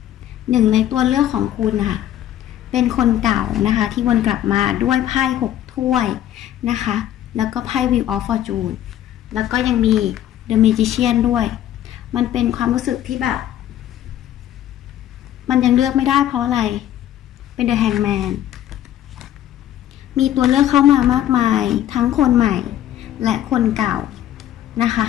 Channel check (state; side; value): quieter; right; 12.0 dB